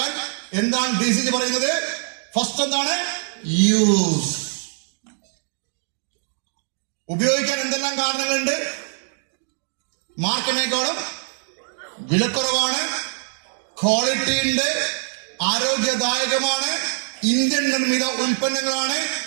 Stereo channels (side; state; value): left; silent; digital silence